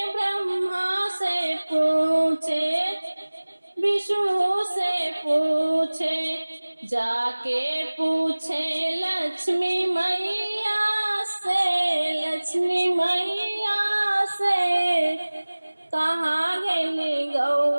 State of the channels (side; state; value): both; inverted; correlation -1.00